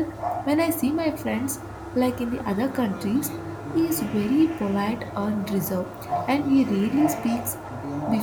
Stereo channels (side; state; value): both; identical; correlation 1.00